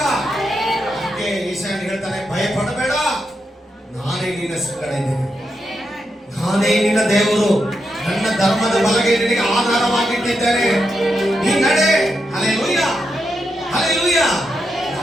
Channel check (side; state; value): both; normal; correlation 0.84